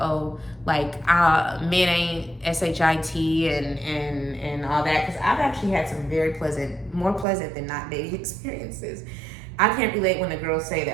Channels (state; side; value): drops out; left; at 7.2 s